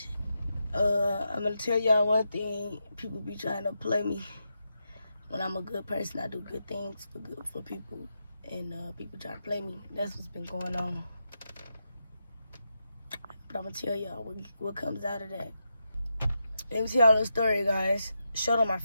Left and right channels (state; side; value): inverted; both; correlation -0.86